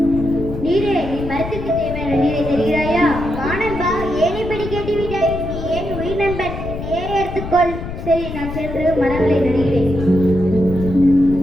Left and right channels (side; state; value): left; noise; rumble, 8 dB below the sound